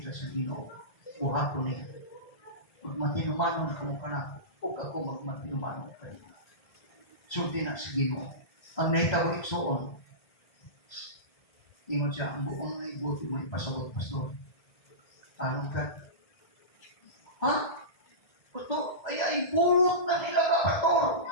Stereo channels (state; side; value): late; right; 1.3 ms